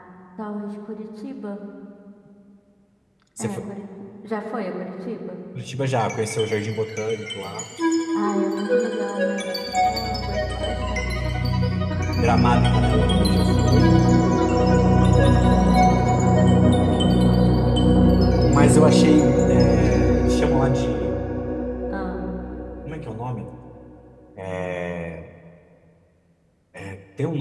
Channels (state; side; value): identical; both; correlation 1.00